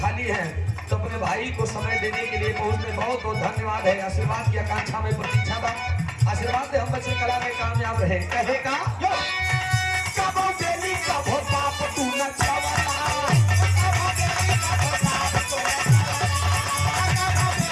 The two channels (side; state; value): both; identical; correlation 1.00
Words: हैं तो अपने भाई को समय देने के लिए पहुंचने बहुत बहुत धन्यवाद है। आशीर्वाद की आकांक्षा में प्रतीक्षा बा, आशीर्वाद से हम बच्चे कला में कामयाब रहे। कहेगा कबो बेली कबो बाप तू न चावला,